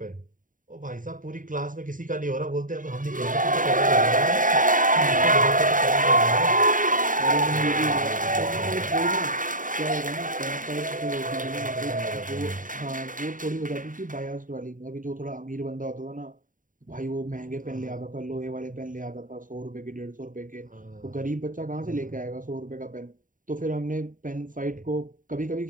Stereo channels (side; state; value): left; late; 0.39 ms